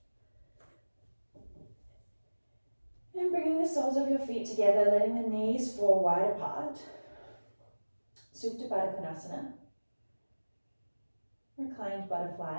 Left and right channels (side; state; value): both; inverted; correlation -1.00